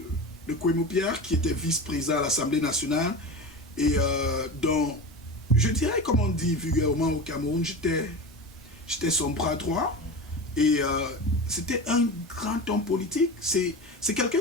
Kwemo Pierre, qui était vice-président à l'Assemblée nationale. Et donc, je dirais, comme on dit vulgairement au Cameroun, j'étais son bras droit. Et c'était un grand homme politique. C'est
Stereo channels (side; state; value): both; normal; correlation 0.27